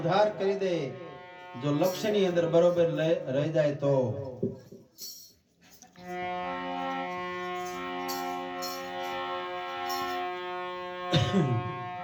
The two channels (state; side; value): identical; both; correlation 1.00